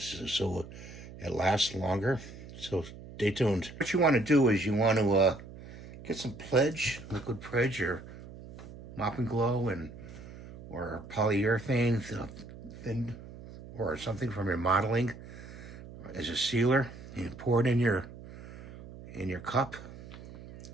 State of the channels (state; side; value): noise; right; hum, 15 dB below the sound